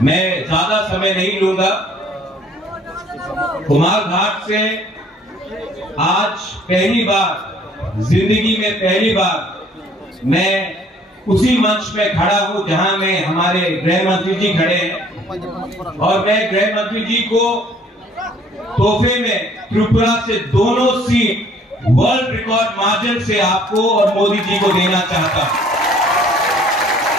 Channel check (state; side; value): normal; both; correlation 0.58